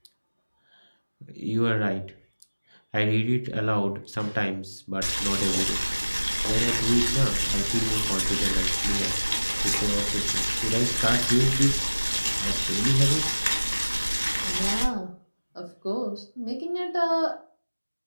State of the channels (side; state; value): both; inverted; correlation -1.00